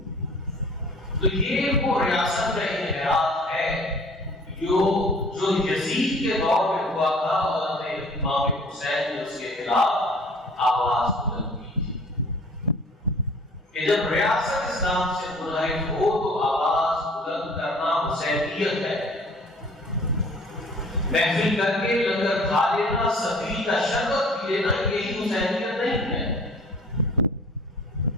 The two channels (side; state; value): both; normal; correlation 0.50